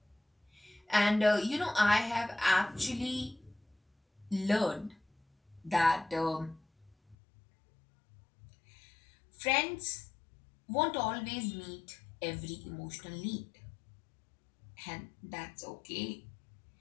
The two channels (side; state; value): right; drops out; at 7.2 s